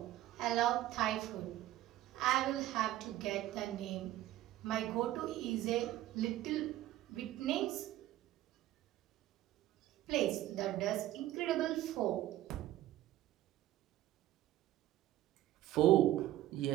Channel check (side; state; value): left; quieter; 14.6 dB